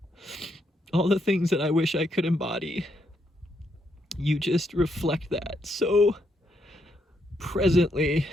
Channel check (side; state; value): both; normal; correlation 0.77